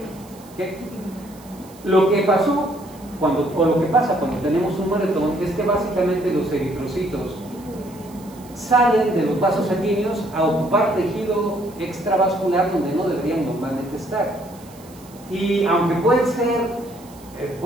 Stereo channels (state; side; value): noise; right; hiss, 24 dB below the sound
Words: ¿Okay? Lo que pasó lo que pasa cuando tenemos un moretón es que básicamente los eritrocitos salen de los vasos sanguíneos a ocupar tejido extravascular donde no deberían normalmente estar. Y aunque pueden